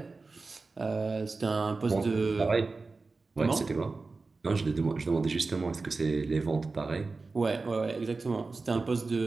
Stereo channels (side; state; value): left; quieter; 3.9 dB